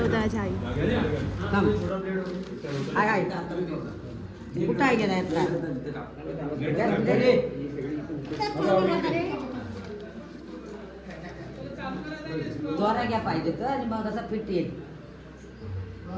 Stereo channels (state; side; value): identical; both; correlation 1.00